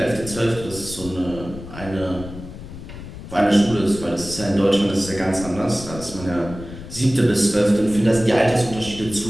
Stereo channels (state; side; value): noise; left; rumble, 13 dB below the sound